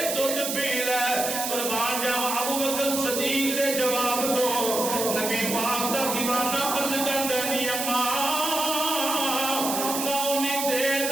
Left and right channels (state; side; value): noise; right; hiss, 2 dB below the sound